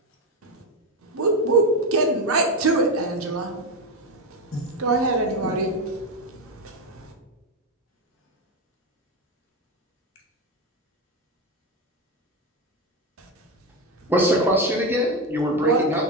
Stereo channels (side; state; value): both; normal; correlation 0.13